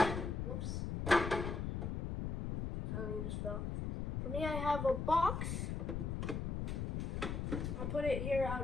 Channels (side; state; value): left; noise; rumble, 2 dB below the sound